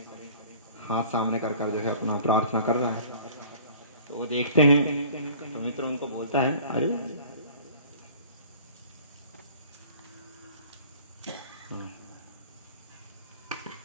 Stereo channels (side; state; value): both; inverted; correlation -0.47